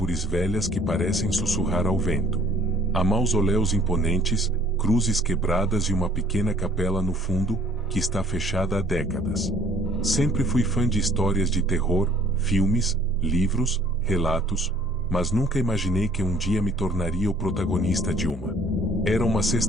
velhas que parecem sussurrar ao vento. Há mausoléus imponentes, cruzes quebradas e uma pequena capela no fundo, que está fechada há décadas. Sempre fui fã de histórias de terror, filmes, livros, relatos, mas nunca imaginei que um dia me tornaria o protagonista de uma. Era uma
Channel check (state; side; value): noise; right; hum, 16 dB below the sound